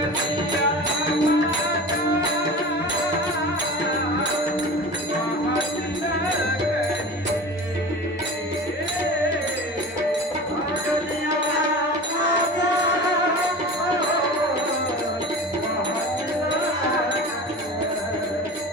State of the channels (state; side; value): normal; both; correlation 0.34